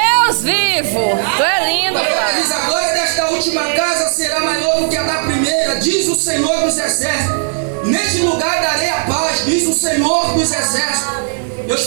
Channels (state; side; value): silent; left; digital silence